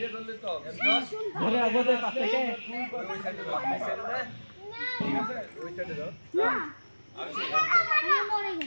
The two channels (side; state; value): both; inverted; correlation -1.00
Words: ধরে আগে পাশ থেকে ওই সাইডে দাও, এই সাইডে না, ঠিক আছে ওই সাইডে দাও না আর মরে